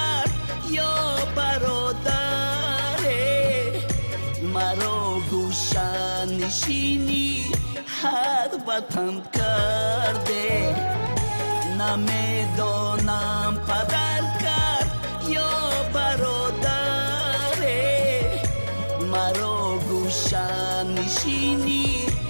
یا برادره، مرا گوشه نشینی هر وطن کرده. نمیدانم پدر کرد یا برادره، مرا گوشه نشینی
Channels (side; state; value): both; inverted; correlation -1.00